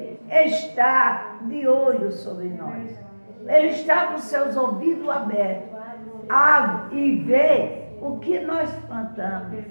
está de olho sobre nós. Ele está com seus ouvidos abertos e vê o que nós plantamos.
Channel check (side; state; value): both; inverted; correlation -1.00